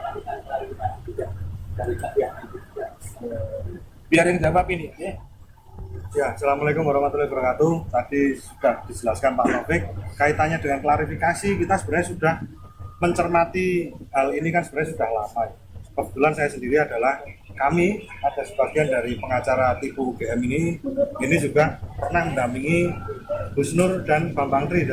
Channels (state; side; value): identical; both; correlation 1.00